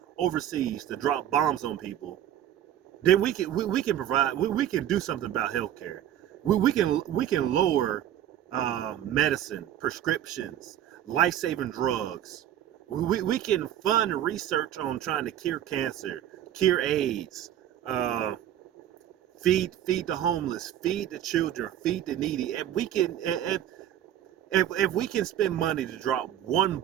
overseas to drop bombs on people, then we can provide, we can do something about healthcare. We can lower medicine, prescriptions, life-saving drugs. We can fund research on trying to cure cancer, cure AIDS, feed the homeless, feed the children, feed the needy. If we can spend money to drop one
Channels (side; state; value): left; quieter; 11.4 dB